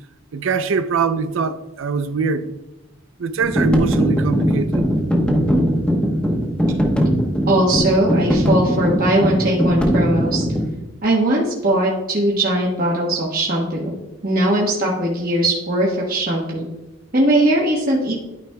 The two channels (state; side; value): normal; both; correlation 0.58